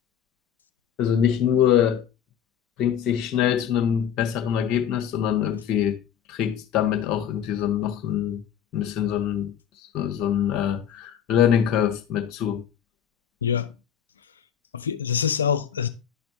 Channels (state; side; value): quieter; right; 9.1 dB